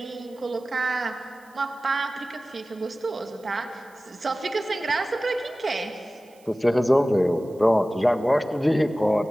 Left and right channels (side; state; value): right; noise; hiss, 30 dB below the sound